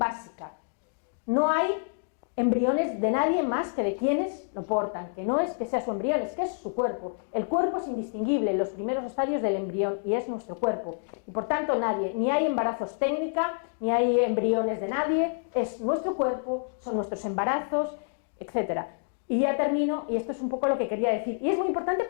No hay embriones de nadie más que de quienes lo portan, que no es que sea su embrión, es que es su cuerpo. El cuerpo es indistinguible en los primeros estadios del embrión y es nuestro cuerpo. Y por tanto nadie, ni hay embarazos técnica, ni hay embriones de nadie, es nuestro cuerpo, son nuestros embarazos, etc. Y ya termino, y esto es un poco lo que quería decir, y es muy importante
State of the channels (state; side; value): silent; right; digital silence